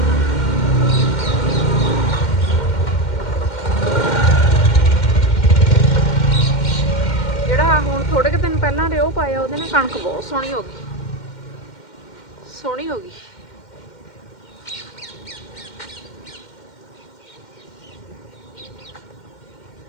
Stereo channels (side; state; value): right; late; 2.1 ms